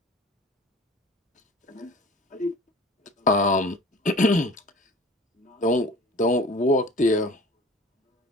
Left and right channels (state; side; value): normal; both; correlation 0.43